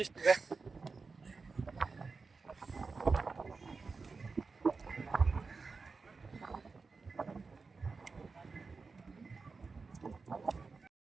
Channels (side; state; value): left; quieter; 4.4 dB